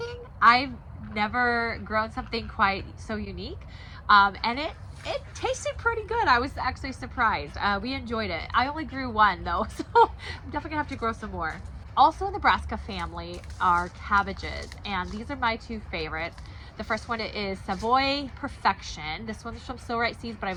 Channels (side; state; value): both; identical; correlation 1.00